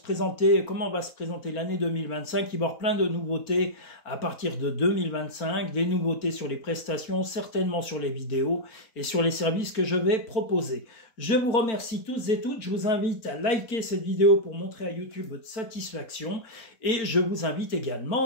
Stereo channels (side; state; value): right; late; 4.4 ms